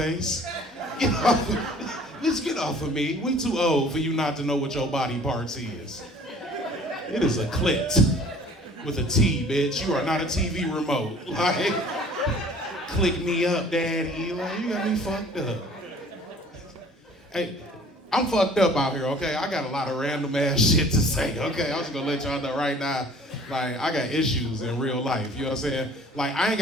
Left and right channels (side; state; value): both; normal; correlation 0.50